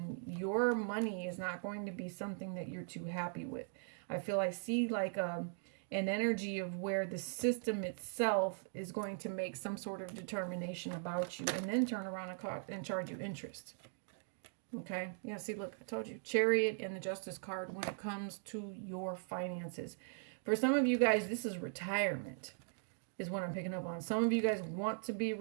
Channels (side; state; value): left; silent; digital silence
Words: your money is not going to be something that you're too happy with. I feel I see like an energy of where the system itself is going to make some sort of determination about you and then turn around and charge you interest. Okay, yeah, see, look, I told you, Chariot and the Justice card when it comes to your finances. For some of you guys, this is retirement, is what I'm picking up on. Some of you guys want to be